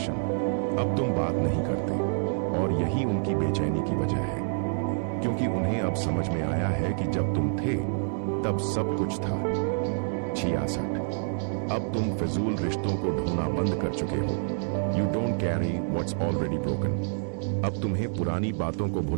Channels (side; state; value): left; silent; digital silence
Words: अब तुम बात नहीं करते और यही उनकी बेचैनी की वजह है, क्योंकि उन्हें अब समझ में आया है कि जब तुम थे तब सब कुछ था। 66, अब तुम फिजूल रिश्तों को ढोना बंद कर चुके हो। You don't carry what's already broken. अब तुम्हें पुरानी बातों को